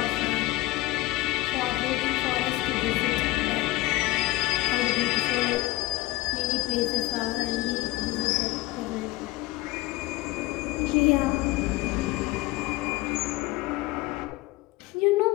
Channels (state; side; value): quieter; right; 19.3 dB